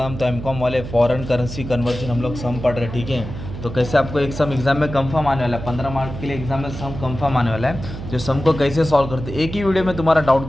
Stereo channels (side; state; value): right; noise; hum, 9 dB below the sound